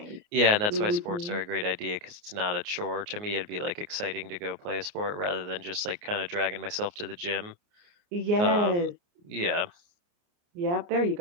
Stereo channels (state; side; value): late; left; 29 ms